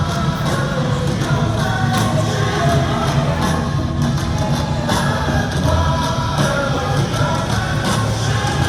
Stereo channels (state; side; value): identical; both; correlation 1.00